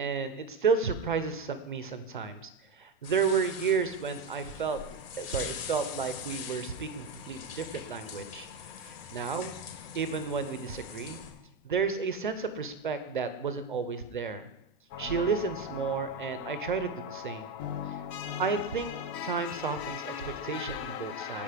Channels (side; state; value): left; quieter; 3.7 dB